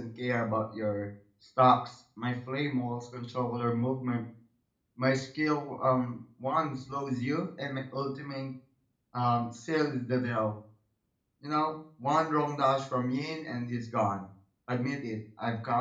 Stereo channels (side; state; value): both; identical; correlation 1.00